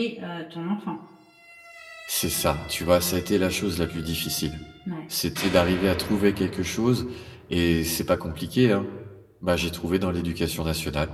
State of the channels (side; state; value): both; identical; correlation 1.00